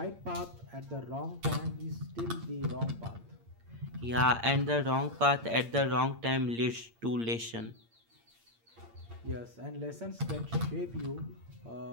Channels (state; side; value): late; left; 8.7 ms